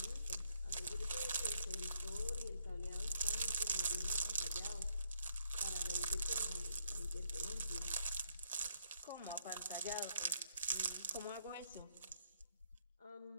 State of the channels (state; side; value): inverted; both; correlation -0.72